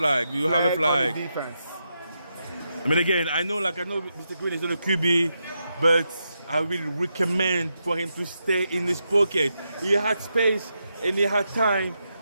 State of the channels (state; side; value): inverted; both; correlation -0.84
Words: We have a flag. On the defense. I mean, again, I know Mr. Green is not a QB, but I will recommend for him to stay in his pocket. He had space and he had time